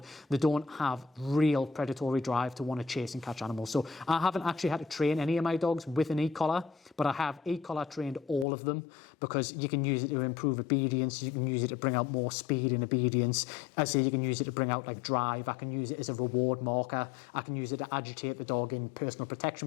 they don't have real predatory drive to want to chase and catch animals. So I haven't actually had to train any of my dogs with an e-collar, but I have e-collar trained all of them because you can use it to improve obedience, you can use it to bring out more speed and obedience. I say you can use it to bring out like drive, I can use it as a reward marker, I can use it to agitate the dog in personal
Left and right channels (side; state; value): right; drops out; at 8.5 s